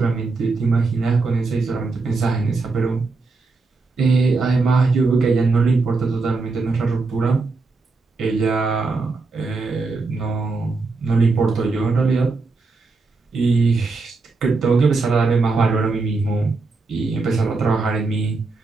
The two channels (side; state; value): left; quieter; 3.9 dB